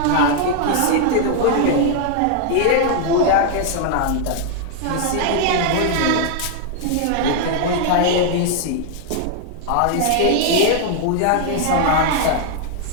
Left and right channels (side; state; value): both; different; correlation 0.00